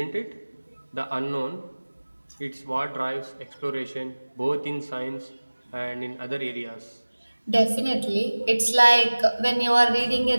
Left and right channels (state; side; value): inverted; both; correlation -1.00